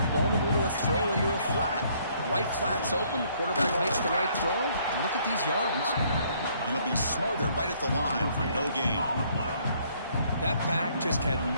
vulnerable to a throw into a flat. Right flat's open, the quarterback makes the right throw. Look at these yards. He'll be smothered right at the line for no gain. That back just had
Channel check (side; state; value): both; inverted; correlation -0.65